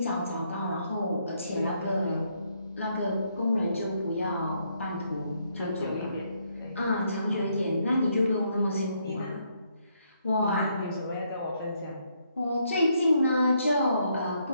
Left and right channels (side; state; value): both; inverted; correlation -0.74